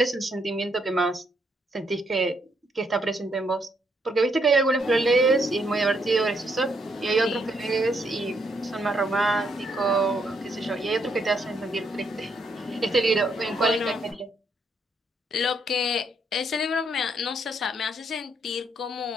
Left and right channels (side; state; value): both; normal; correlation 0.74